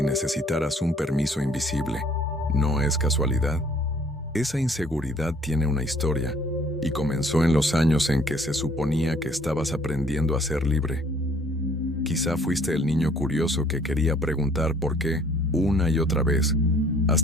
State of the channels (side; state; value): both; normal; correlation 0.59